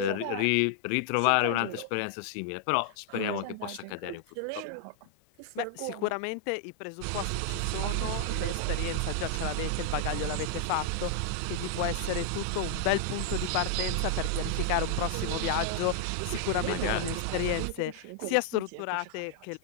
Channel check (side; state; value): both; different; correlation 0.00